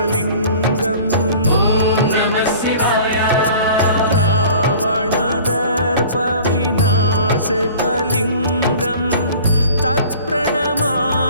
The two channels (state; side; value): inverted; both; correlation -0.45